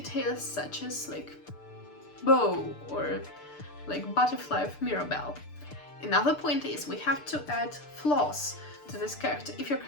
such as bow, or butterfly of Mirabelle. Another point is we have to add flaws to this character. If your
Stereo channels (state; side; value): late; right; 6.8 ms